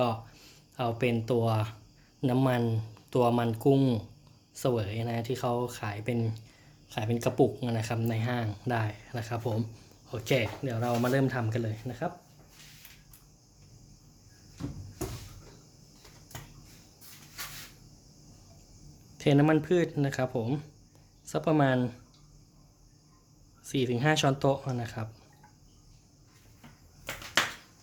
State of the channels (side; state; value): both; identical; correlation 1.00